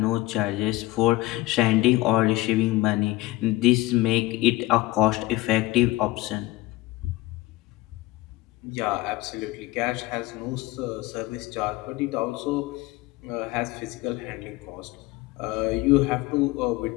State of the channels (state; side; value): quieter; right; 18.7 dB